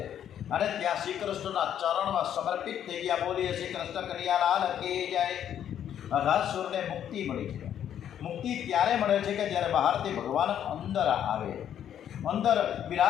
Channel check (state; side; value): quieter; right; 9.9 dB